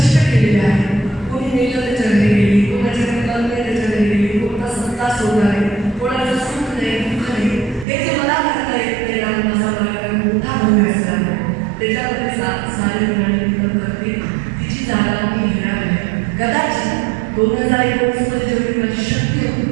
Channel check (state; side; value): drops out; left; at 7.9 s